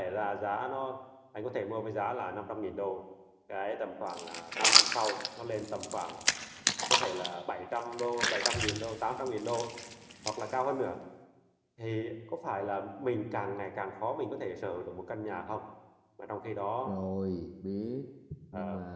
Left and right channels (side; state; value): both; identical; correlation 1.00